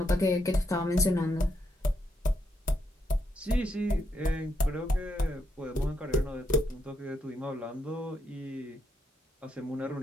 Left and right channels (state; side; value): normal; both; correlation 0.79